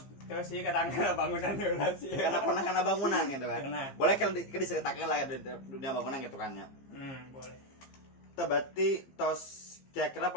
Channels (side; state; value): right; late; 15 ms